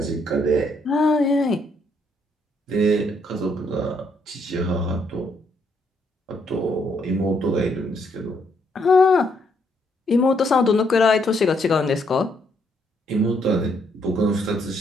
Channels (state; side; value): normal; both; correlation 0.72